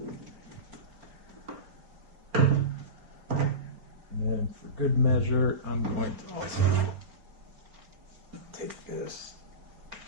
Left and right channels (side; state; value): left; late; 4.4 ms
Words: And then for good measure, I'm going to also take this.